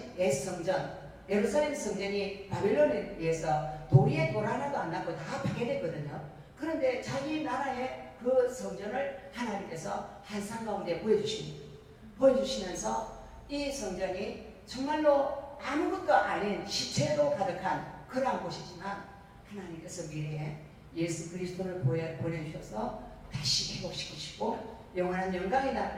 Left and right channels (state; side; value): identical; both; correlation 1.00